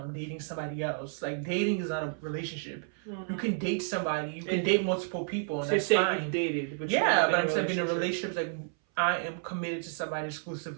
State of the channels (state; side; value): silent; left; 57 dB below the other